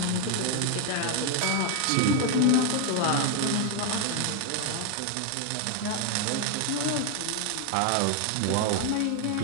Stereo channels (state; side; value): different; both; correlation 0.01